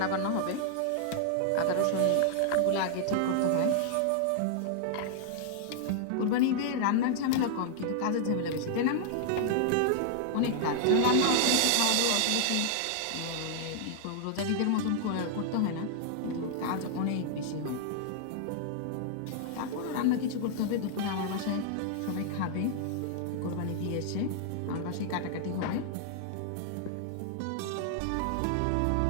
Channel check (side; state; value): both; different; correlation -0.01